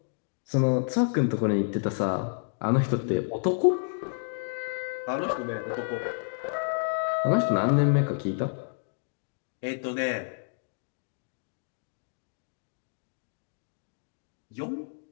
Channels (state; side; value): silent; right; digital silence